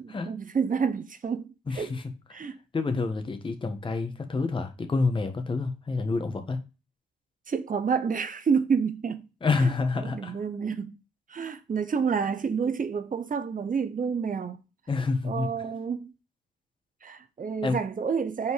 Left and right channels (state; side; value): normal; both; correlation 0.70